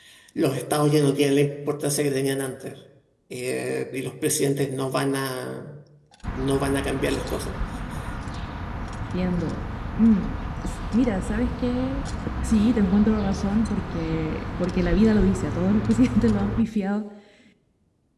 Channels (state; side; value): identical; both; correlation 1.00